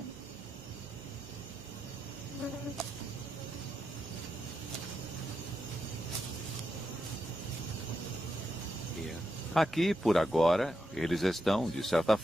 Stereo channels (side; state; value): both; normal; correlation 0.85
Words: Aqui, por agora, eles estão, de certa